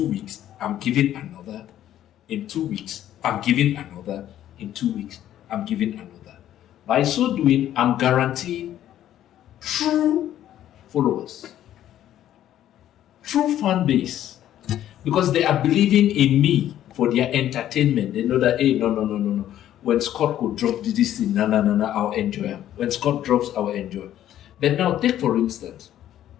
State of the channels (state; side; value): quieter; right; 11.9 dB